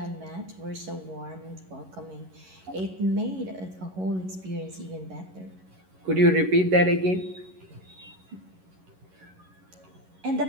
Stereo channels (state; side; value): late; left; 11 ms